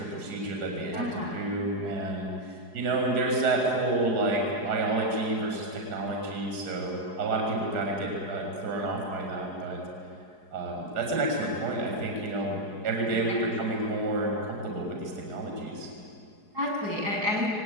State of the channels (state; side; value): late; left; 4.8 ms